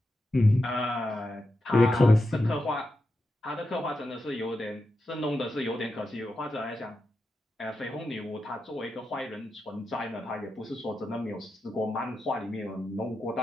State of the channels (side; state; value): both; normal; correlation 0.88